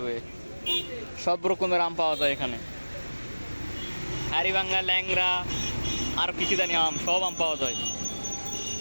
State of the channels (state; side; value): inverted; both; correlation -1.00